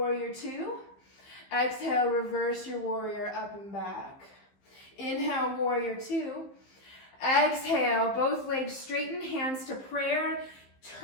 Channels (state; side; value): late; right; 15 ms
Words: two. Exhale, reverse your warrior up and back. Inhale, warrior two. Exhale, both legs straighten, hands to prayer.